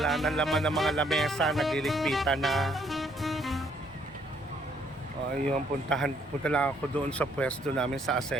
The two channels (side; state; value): both; normal; correlation 0.67